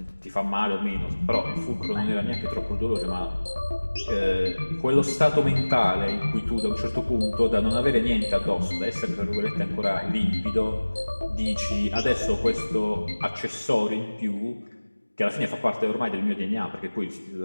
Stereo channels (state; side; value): inverted; both; correlation -1.00